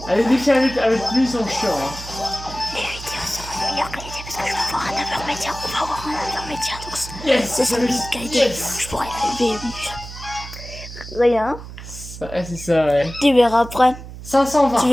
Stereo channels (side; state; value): right; noise; hum, 13 dB below the sound